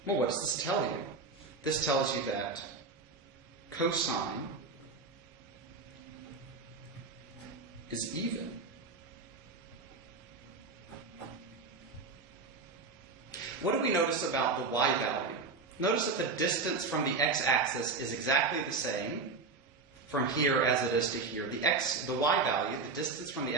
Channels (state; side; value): quieter; left; 4.2 dB